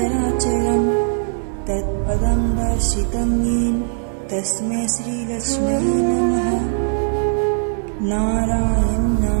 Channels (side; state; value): left; silent; digital silence